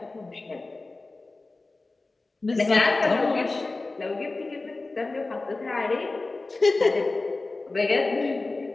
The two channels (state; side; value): quieter; right; 3.3 dB